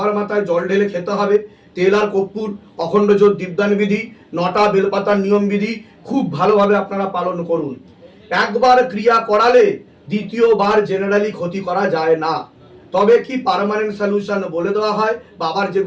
মাথায় জল ঢেলে খেতে হবে, তেল আর কর্পূর, অখণ্ড জ্যোত দীপদান বিধি, 9টা বেলপাতার নিয়ম বিধি খুব ভালোভাবে আপনারা পালন করুন। একবার ক্রিয়া করালে দ্বিতীয়বার জেনারেলি ক্ষতি করা যায় না। তবে কি পার্মানেন্ট সলিউশন বলে দেওয়া হয়, বাবার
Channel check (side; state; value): both; identical; correlation 1.00